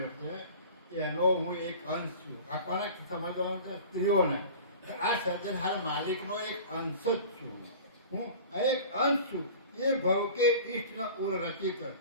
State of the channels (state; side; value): inverted; both; correlation -0.40